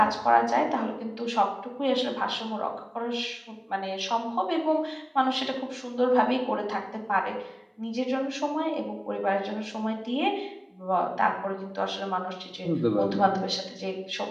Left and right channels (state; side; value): identical; both; correlation 1.00